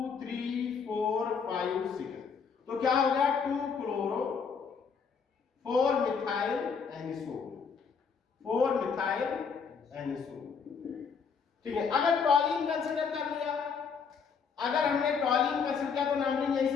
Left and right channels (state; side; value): quieter; right; 6.0 dB